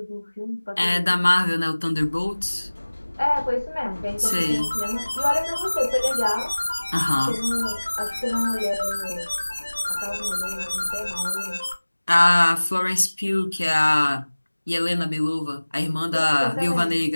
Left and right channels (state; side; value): inverted; both; correlation -1.00